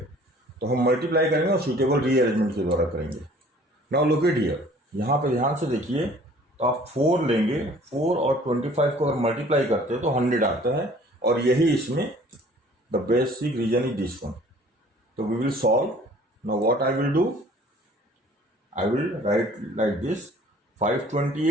तो हम मल्टीप्लाई करेंगे और सूटेबल रीअरेंजमेंट के द्वारा करेंगे। नाउ लुक एट हियर, यहाँ पे ध्यान से देखिए, तो आप 4 लेंगे, 4 और 25 को अगर मल्टीप्लाई करते हैं तो 100 आता है, और यही इसमें the basic reason is this one. तो we will solve. Now what I will do, I will write like this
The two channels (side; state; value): both; normal; correlation 0.52